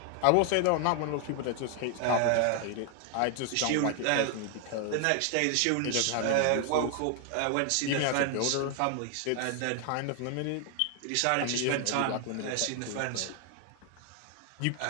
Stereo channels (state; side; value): different; both; correlation 0.00